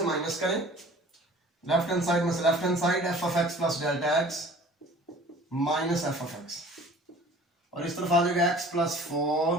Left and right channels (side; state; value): both; normal; correlation 0.47